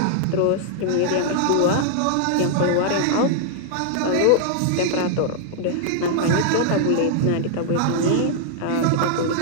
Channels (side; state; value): both; different; correlation -0.01